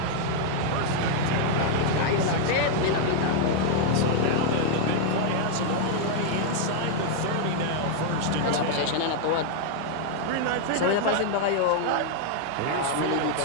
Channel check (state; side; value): different; both; correlation 0.00